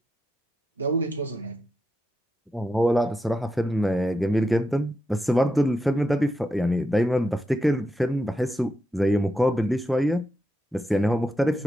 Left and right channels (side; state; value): both; normal; correlation 0.86